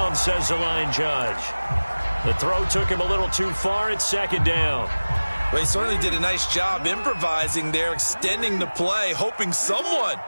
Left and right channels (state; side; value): inverted; both; correlation -1.00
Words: says the line judge. The throw took him a little too far. It's second down. Well, he certainly did a nice job improvising there, extending the play, hoping someone